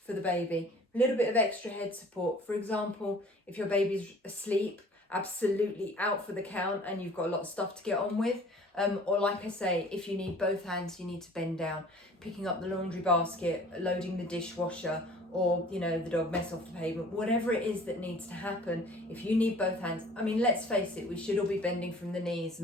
for the baby. A little bit of extra head support. For example, if your baby's asleep absolutely out for the count and you've got a lot of stuff to get on with. Or like I say, if you need both hands, you need to bend down, picking up the laundry basket, loading the dishwasher, or you know, the dog mess off the pavement, whatever it is that needs to happen. If you need both hands, I mean, let's face it, we should all be bending from the knees,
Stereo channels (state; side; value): normal; both; correlation 0.49